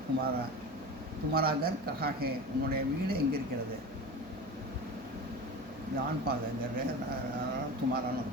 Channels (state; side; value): noise; right; hum, 20 dB below the sound